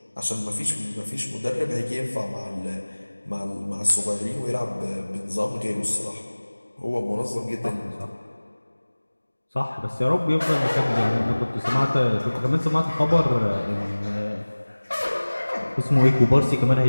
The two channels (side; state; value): both; inverted; correlation -1.00